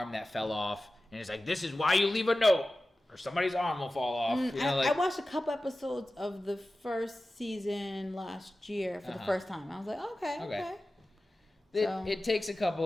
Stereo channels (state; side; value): normal; both; correlation 0.95